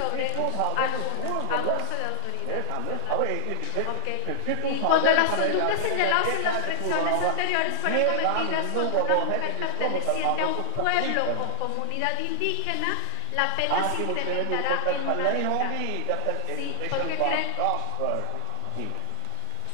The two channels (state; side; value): different; both; correlation -0.01